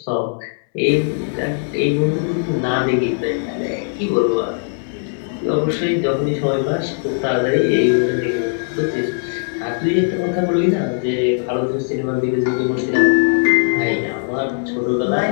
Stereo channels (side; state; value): right; silent; digital silence